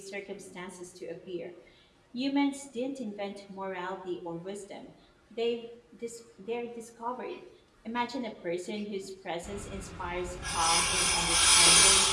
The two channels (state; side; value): identical; both; correlation 1.00